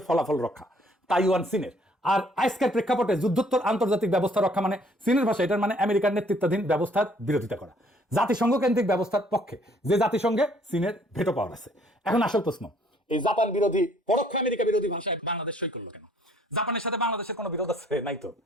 ফলাফল রক্ষা তাইওয়ান চীনের। আর আজকের প্রেক্ষাপটে যুদ্ধোত্তর আন্তর্জাতিক ব্যবস্থা রক্ষা মানে চীনের ভাষা এটার মানে আমেরিকার নেতৃত্বাধীন ব্যবস্থার বিরোধিতা করা, জাতিসংঘ কেন্দ্রিক ব্যবস্থার পক্ষে, যে জাতিসংঘে চীনের ভেটো পাওয়ার আছে। এখন আসল প্রশ্ন, এই জাপান বিরোধী, পরোক্ষ আমেরিকা বিরোধী ভাষায় বাংলাদেশ সই করলো কেন? জাপানের সাথে বাংলাদেশের কোনো বিরোধ আছে? নাই তো।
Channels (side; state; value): both; normal; correlation 0.61